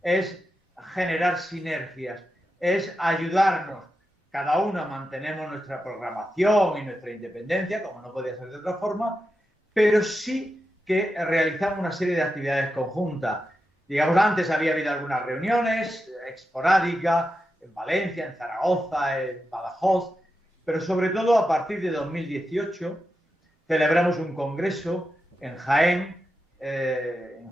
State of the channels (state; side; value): normal; both; correlation 0.89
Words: es generar sinergias, es ayudarnos. Cada uno mantenemos nuestra programación y nuestra independencia, como no podía ser de otra forma, pero sí que realizamos una serie de actividades conjuntas. Digamos, antes había habido algunas reuniones esporádicas en Valencia, en Zaragoza, en Badajoz, pero sobre todo a partir de 2018 celebramos un congreso en Jaén, en